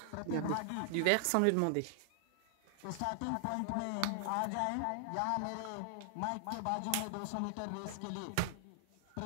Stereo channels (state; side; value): different; both; correlation 0.00